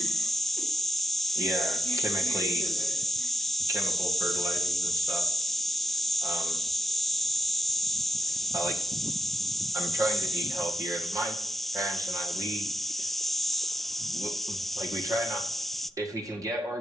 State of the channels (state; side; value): normal; both; correlation 0.86